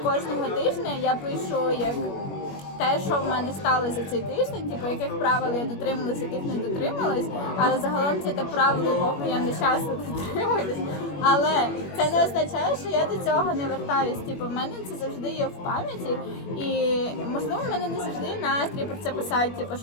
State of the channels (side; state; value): right; late; 21 ms